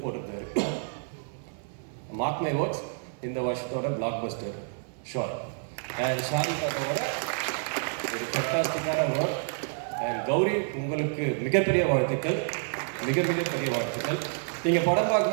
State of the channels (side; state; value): left; silent; 57 dB below the other